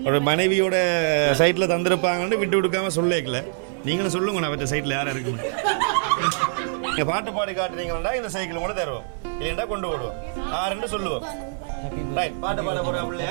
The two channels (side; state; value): left; silent; 56 dB below the other